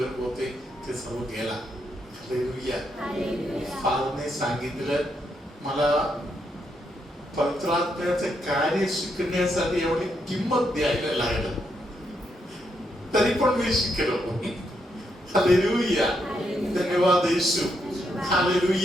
होते, ते सर्व गेला. हालेलुया. फादरने सांगितलं मला पवित्र आत्म्याचं कार्य शिकण्यासाठी एवढी किंमत द्यायला लागलं, तरी पण मी शिकलो. हालेलुया. धन्यवाद Yeshu.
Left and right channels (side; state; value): both; normal; correlation 0.79